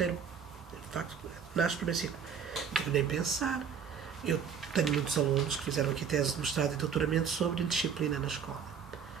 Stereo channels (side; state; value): left; quieter; 7.1 dB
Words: de facto, nasce no primeiro ciclo. Não tenho nem pensar. Eu tenho muitos alunos que fizeram aqui tese de mestrado e doutoramento sobre indisciplina na escola.